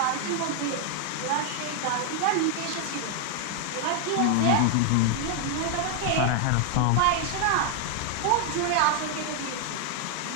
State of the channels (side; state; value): both; different; correlation 0.00